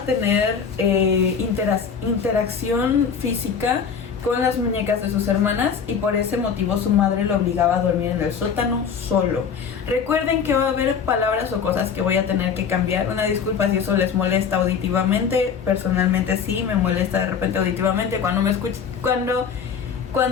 interacción física con las muñecas de sus hermanas, y por ese motivo su madre lo obligaba a dormir en el sótano solo. Recuerden que va a haber palabras o cosas que voy a tener que cambiar. Una disculpa si eso les molesta auditivamente. Personalmente sí me molesta de repente auditivamente cuando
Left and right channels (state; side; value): quieter; right; 6.7 dB